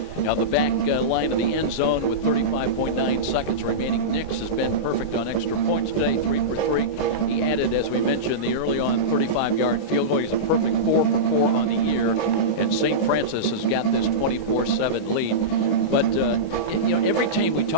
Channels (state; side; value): late; right; 19 ms